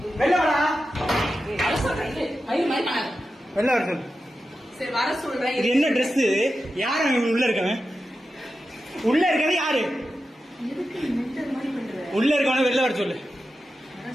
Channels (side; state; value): both; normal; correlation 0.91